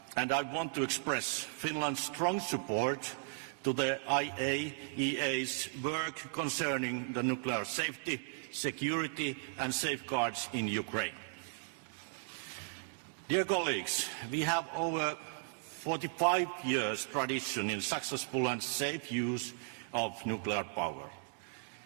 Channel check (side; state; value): left; silent; digital silence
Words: I want to express Finland's strong support to the IAEA's work concerning the nuclear safety, security and safeguards in Ukraine. Dear colleagues, we have over 45 years tradition in successful and safe use of nuclear power.